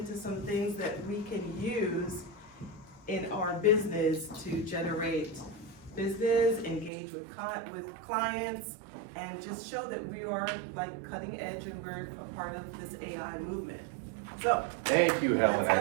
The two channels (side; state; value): left; drops out; at 6.9 s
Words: some things that we can use in our business to generate business, engage with clients, and just show that we are like cutting edge and we're a part of this AI movement. So, thank you, Helen. let's I